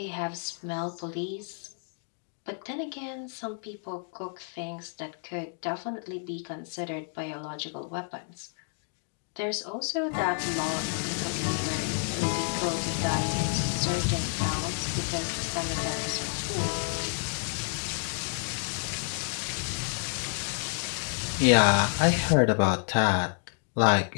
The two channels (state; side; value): silent; right; 58 dB below the other